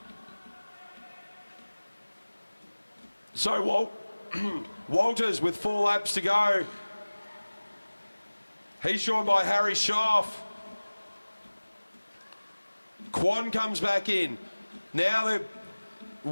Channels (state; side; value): inverted; both; correlation -1.00